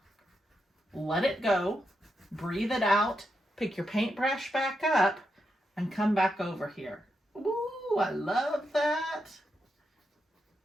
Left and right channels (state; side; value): normal; both; correlation 0.84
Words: Let it go. Breathe it out. Pick your paintbrush back up and come back over here. Ooh, I love that.